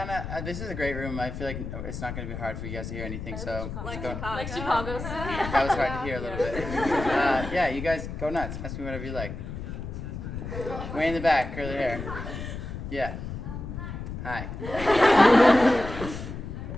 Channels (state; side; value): noise; left; rumble, 7 dB below the sound